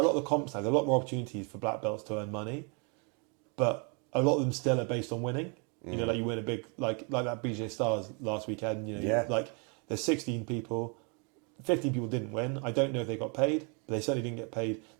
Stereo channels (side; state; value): left; quieter; 35.0 dB